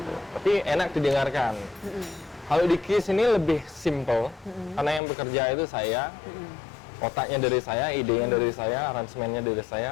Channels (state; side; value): drops out; right; at 5.0 s